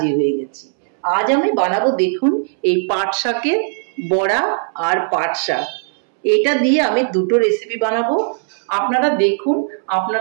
হয়ে গেছি। আজ আমি বানাবো, দেখুন, এই পাট শাকের বড়া আর পাট শাক। এটা দিয়ে আমি দুটো রেসিপি বানাবো, আপনারা দেখুন,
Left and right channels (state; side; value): silent; left; 67 dB below the other